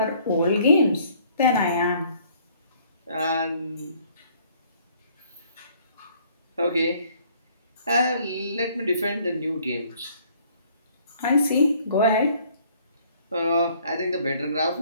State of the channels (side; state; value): both; inverted; correlation -0.60